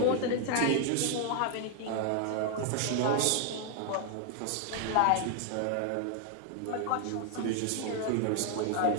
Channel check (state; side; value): different; both; correlation 0.00